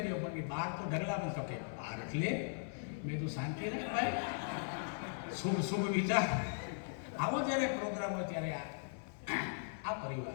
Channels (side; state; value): right; silent; 52 dB below the other